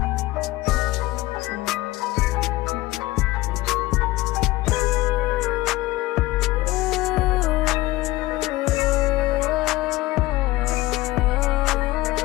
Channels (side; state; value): right; quieter; 18.5 dB